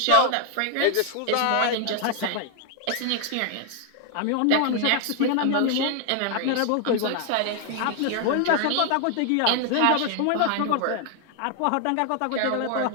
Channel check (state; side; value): different; both; correlation 0.00